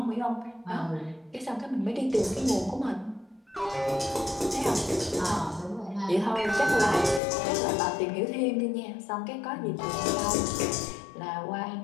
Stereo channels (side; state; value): right; drops out; at 7.2 s